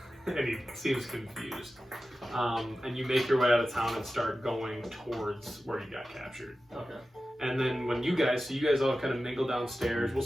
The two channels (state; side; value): normal; both; correlation 0.94